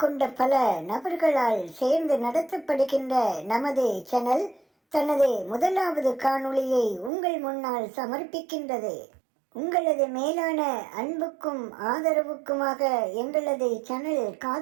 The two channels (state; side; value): drops out; left; at 7.1 s